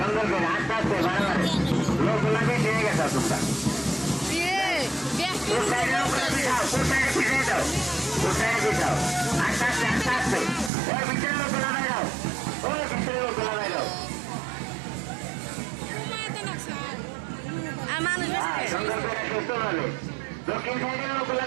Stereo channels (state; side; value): drops out; left; at 10.7 s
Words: করে আস্তে আস্তে বাড়াবাড়ি লোকগুলা বেশি হয়ে গেছে তোমরা। আস্তে আস্তে আস্তে আস্তে ওই ভিতরে লোকগুলা বাইরাও, ওই ভিতরে লোকগুলা বাইরাও। সুন্দর করে সুস্থ ভাবে দক্ষিণ সাইডের লোকগুলা